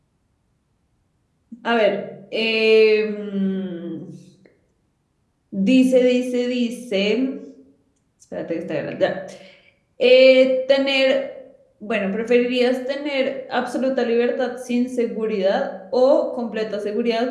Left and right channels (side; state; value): both; identical; correlation 1.00